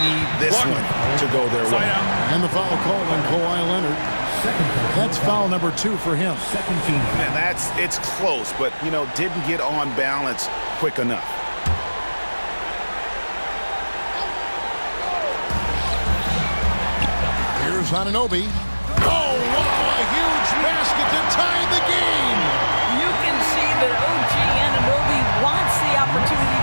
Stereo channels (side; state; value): both; inverted; correlation -1.00